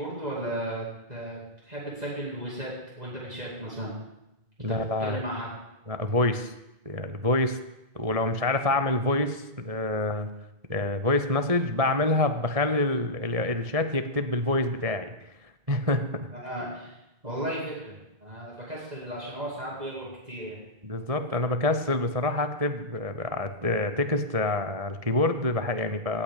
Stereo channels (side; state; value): left; late; 1.7 ms